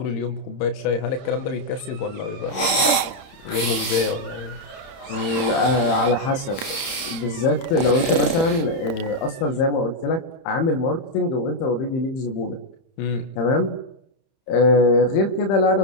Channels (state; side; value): late; right; 31 ms